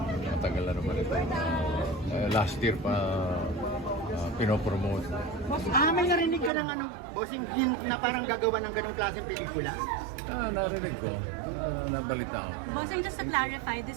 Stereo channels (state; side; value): drops out; left; at 6.5 s